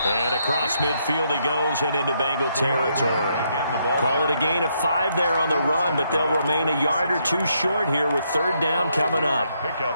And across midfield he goes and into Bengal territory. Call it a gain of 5 there on the run, but they'll remain a yard or 2 short here with 3rd down coming up. Pick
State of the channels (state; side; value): inverted; both; correlation -0.75